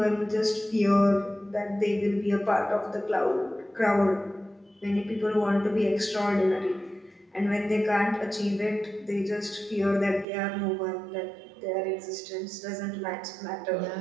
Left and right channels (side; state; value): left; drops out; at 10.2 s